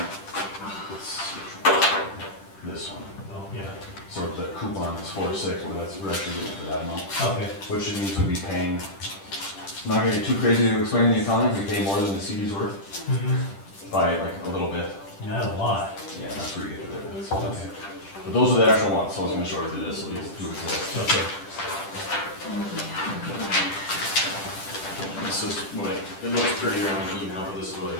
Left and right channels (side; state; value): right; late; 10 ms